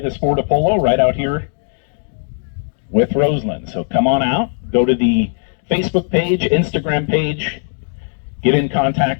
sport of polo right out here with Roseland. So come on out, go to the Facebook page, Instagram page, get in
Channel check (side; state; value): right; silent; 68 dB below the other